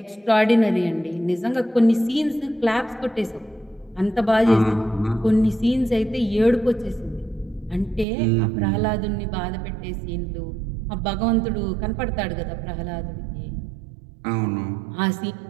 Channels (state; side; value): drops out; left; at 8.1 s